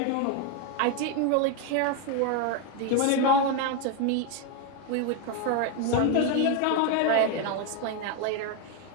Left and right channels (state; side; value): different; both; correlation 0.02